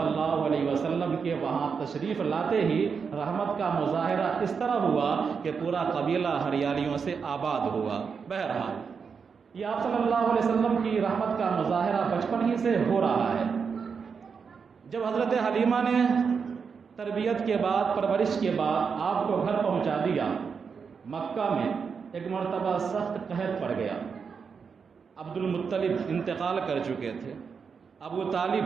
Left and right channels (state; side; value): quieter; left; 5.9 dB